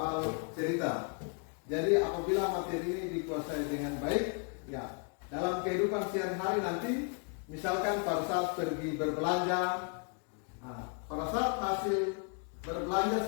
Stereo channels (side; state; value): right; quieter; 39.5 dB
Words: cerita. Jadi apabila materi ini dikuasai dengan baik, ya, dalam kehidupan sehari-hari nanti, misalkan pada saat pergi berbelanja, pada saat hasil